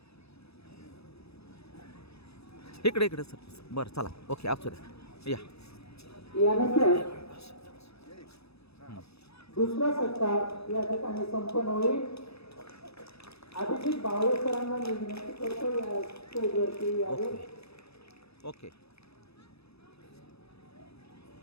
इकडे इकडे सर बरं चला ओके आप या यानंतर दुसरा सत्कार या ठिकाणी संपन्न होईल. अभिजित बावळे सरांना मी विनंती करतो या स्टेजवरती यावे. ओके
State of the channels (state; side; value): late; right; 0.78 ms